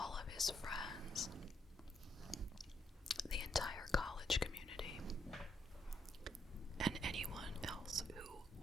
of his friends, the entire college community, and anyone else who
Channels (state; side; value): normal; both; correlation 0.75